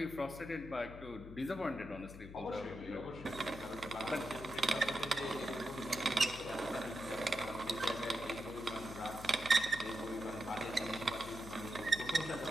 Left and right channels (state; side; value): noise; left; hum, 13 dB below the sound